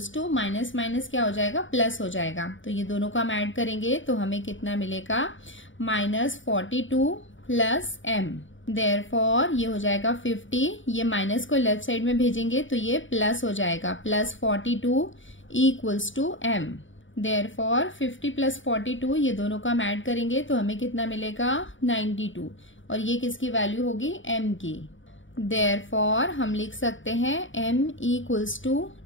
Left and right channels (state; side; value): late; right; 0.56 ms